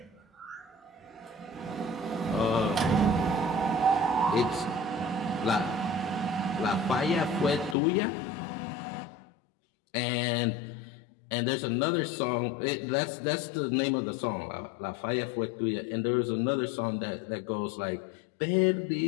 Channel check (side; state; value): right; drops out; at 7.8 s